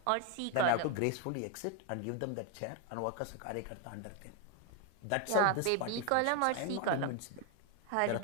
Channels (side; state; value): both; different; correlation 0.01